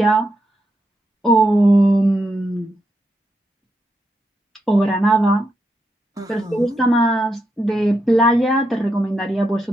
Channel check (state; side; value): normal; both; correlation 0.83